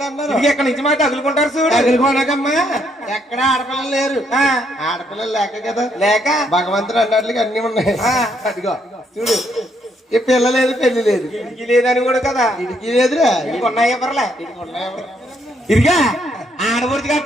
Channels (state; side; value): normal; both; correlation 0.73